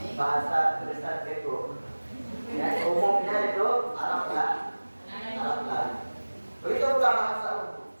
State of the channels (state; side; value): inverted; both; correlation -1.00